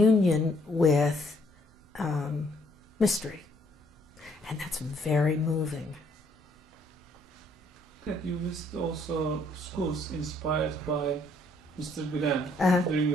with mystery. And that's very moving. You visit also schools inspired by Mr. Gulen during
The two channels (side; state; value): both; normal; correlation 0.67